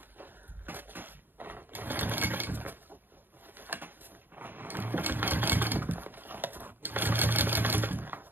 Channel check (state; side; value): late; left; 0.093 ms